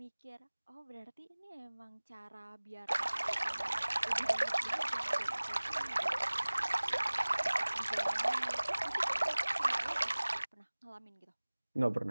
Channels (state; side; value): inverted; both; correlation -1.00